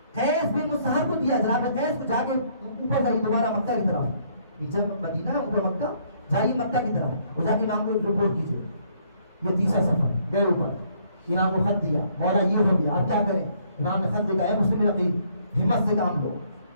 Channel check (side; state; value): both; inverted; correlation -0.66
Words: قیس بھی مصہر کو دیا. جناب قیس کو جا کے اوپر جائیے دوبارہ مکہ کی طرف، نیچے مدینہ اوپر مکہ، جائیے مکہ کی طرف اور جا کے امام کو رپورٹ کیجیے. یہ تیسرا سفر گئے اوپر، امام کو خط دیا، مولا یہ ہو گیا اب کیا کریں. امام نے خط لکھا ہے مسلم نقیب ہمت سے کام لو.